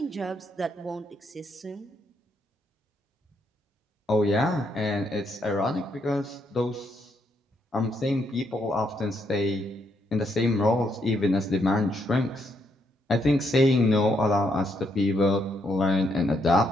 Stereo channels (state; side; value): normal; both; correlation 0.75